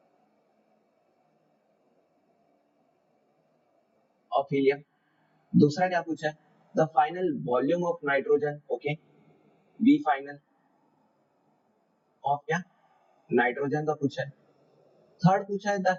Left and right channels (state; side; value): identical; both; correlation 1.00